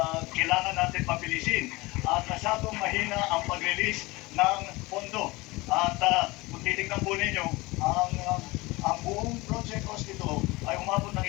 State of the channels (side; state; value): right; quieter; 22.2 dB